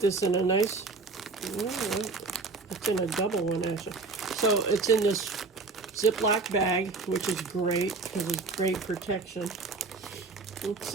in a nice, it's in a double one actually. So it's in this Ziploc bag, which is great because it's great protection. Let's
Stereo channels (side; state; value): left; quieter; 3.9 dB